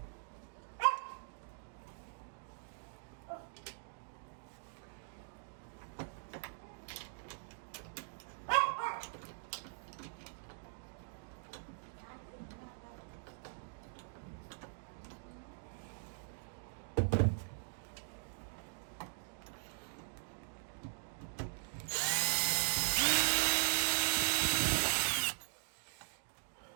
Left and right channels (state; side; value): silent; left; digital silence